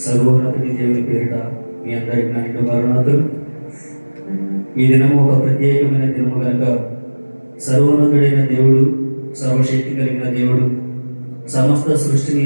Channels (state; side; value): inverted; both; correlation -1.00